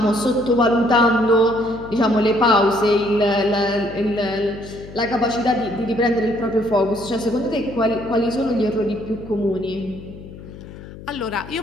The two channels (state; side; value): noise; left; hum, 15 dB below the sound